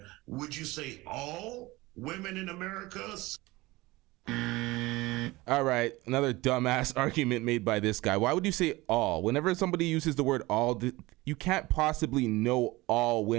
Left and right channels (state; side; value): quieter; left; 20.6 dB